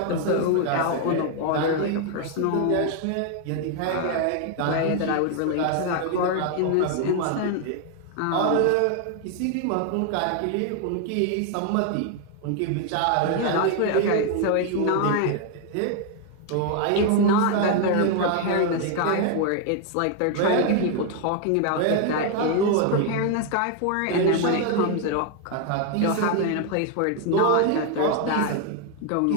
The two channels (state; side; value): different; both; correlation 0.01